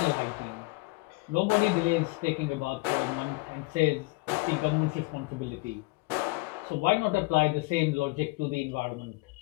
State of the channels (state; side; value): quieter; right; 25.0 dB